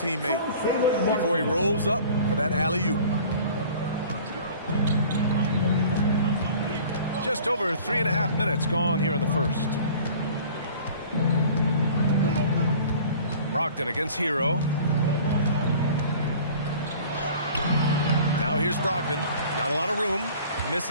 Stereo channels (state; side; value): inverted; both; correlation -0.46